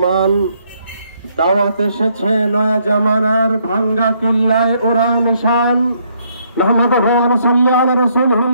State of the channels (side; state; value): both; inverted; correlation -0.71